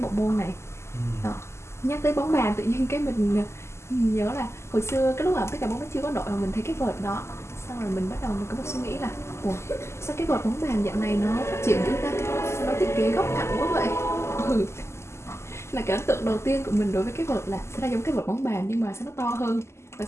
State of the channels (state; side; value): late; right; 0.13 ms